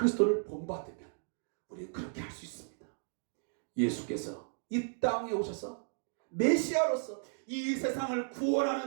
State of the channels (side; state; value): left; silent; digital silence